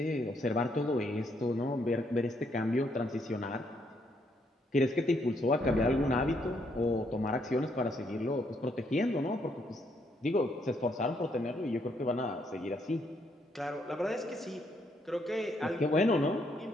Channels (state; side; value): normal; both; correlation 0.73